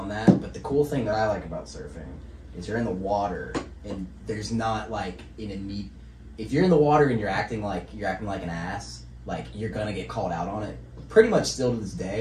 that. But the cool thing that I like about surfing is you're in the water, and there's not like if you're in the water and you're acting like an ass, like you're gonna get called out on it. Pretty much still to this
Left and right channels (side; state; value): both; identical; correlation 1.00